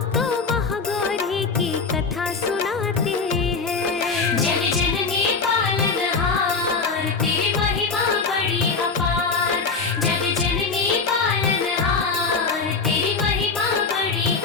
महागौरी की कथा सुनाते हैं। जग जननी पालनहार तेरी महिमा बड़ी अपार, जग जननी पालनहार तेरी महिमा बड़ी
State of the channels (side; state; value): right; quieter; 4.6 dB